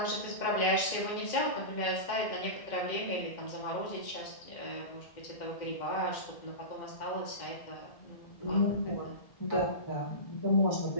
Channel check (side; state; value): right; late; 2.1 ms